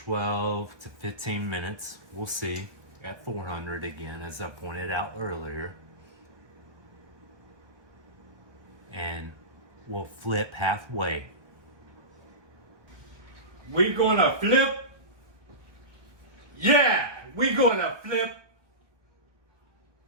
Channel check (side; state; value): left; late; 1.4 ms